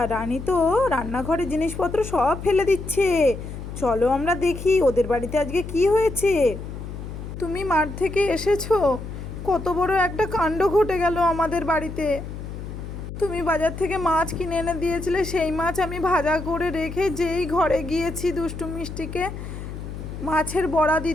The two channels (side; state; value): left; noise; hum, 9 dB below the sound